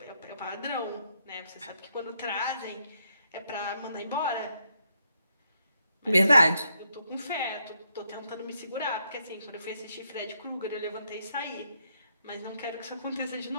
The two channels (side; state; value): both; inverted; correlation -0.77